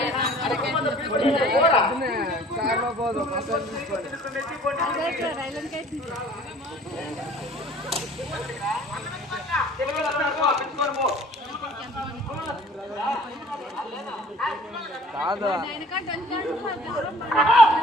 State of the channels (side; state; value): both; normal; correlation 0.51